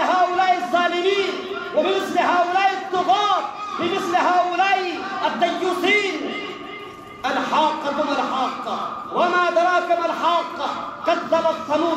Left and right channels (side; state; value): both; identical; correlation 1.00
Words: الظالمين، وبمثل هؤلاء الطغاة، بمثل هؤلاء الديوثين: الحاقة ما الحاقة وما أدراك ما الحاقة، كذبت